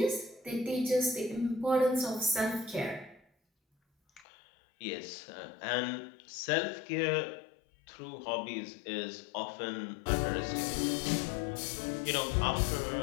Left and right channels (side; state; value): right; drops out; at 4.2 s